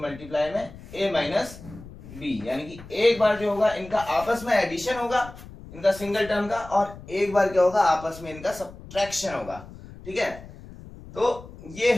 में ए माइनस बी, यानी कि एक बार जो होगा इनका आपस में एडिशन होगा, इनका सिंगल टर्म का, और एक बार क्या होगा आपस में इनका सब्ट्रैक्शन होगा। ठीक है, तो ये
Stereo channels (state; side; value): noise; left; rumble, 17 dB below the sound